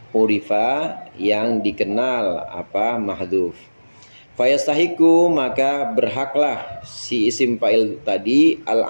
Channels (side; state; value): both; inverted; correlation -1.00